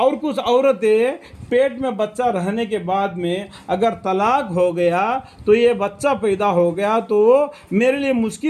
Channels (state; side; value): identical; both; correlation 1.00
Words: کچھ عورتیں پیٹ میں بچہ رہنے کے بعد میں اگر طلاق ہو گیا تو یہ بچہ پیدا ہو گیا تو میرے لیے